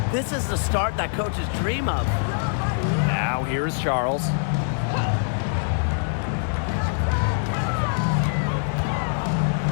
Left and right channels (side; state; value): right; silent; digital silence